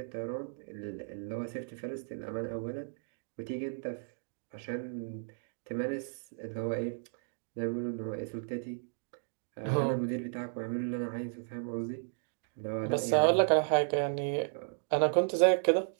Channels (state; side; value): silent; left; digital silence